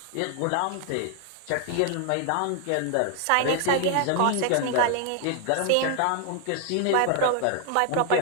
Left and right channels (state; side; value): different; both; correlation 0.00